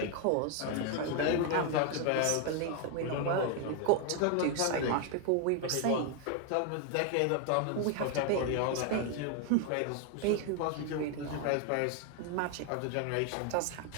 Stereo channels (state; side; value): different; both; correlation 0.01